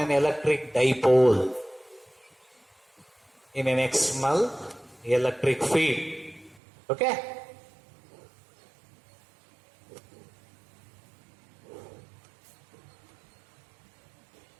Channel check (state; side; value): drops out; left; at 6.6 s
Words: electric dipole in an external electric field. Okay?